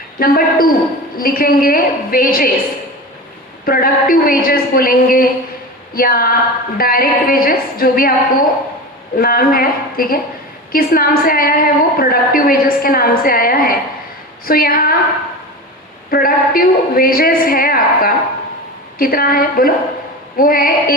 नंबर 2 लिखेंगे वेजेस, प्रोडक्टिव वेजेस बोलेंगे या डायरेक्ट वेजेस, जो भी आपको नाम है, ठीक है, किस नाम से आया है वो प्रोडक्टिव वेजेस के नाम से आया है। सो यहाँ प्रोडक्टिव वेजेस है आपका कितना है बोलो, वो है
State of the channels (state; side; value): normal; both; correlation 0.28